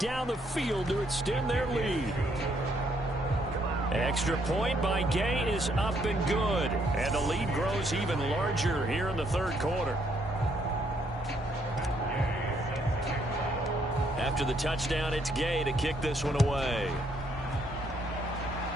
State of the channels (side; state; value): both; normal; correlation 0.71